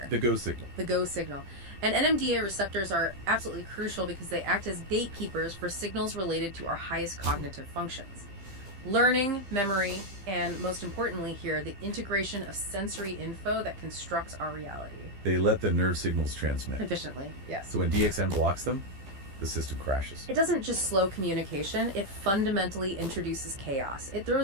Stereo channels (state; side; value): late; left; 15 ms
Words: The go signal. The go signal. And NMDA receptors are absolutely crucial because they act as gatekeepers for signals related to our highest cognitive functions. Learning, memory, and most importantly here, the integration of sensory info that constructs our reality. They let the nerve signals transmit. Efficiently, yes. So when DXM blocks them, the system crashes. It doesn't just slow communication, it fundamentally introduces chaos. It